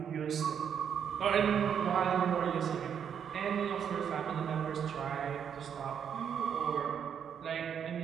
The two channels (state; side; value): quieter; left; 8.0 dB